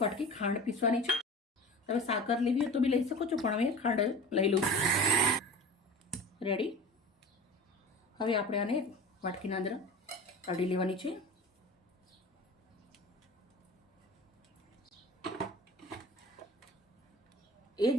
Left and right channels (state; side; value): normal; both; correlation 0.36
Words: વાટકી ખાંડ પીસવાની છે. તમે સાકર લેવી હોય તો બી લઈ શકો છો, પણ હવે ખાંડ લઈ લઉં છું. રેડી. હવે આપણે આને વાટકીના અંદર કાઢી લેવાની છે. એ જ